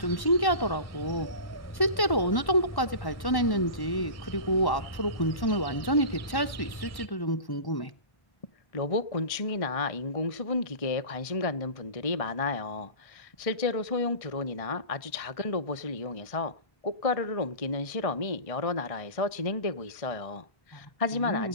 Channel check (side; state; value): right; late; 1.1 ms